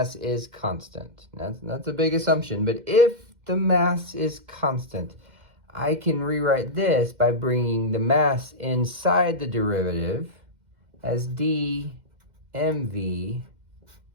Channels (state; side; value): late; left; 2.1 ms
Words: is constant, that's a big assumption, but if the mass is constant, I can rewrite this by bringing the mass inside the derivative as d mv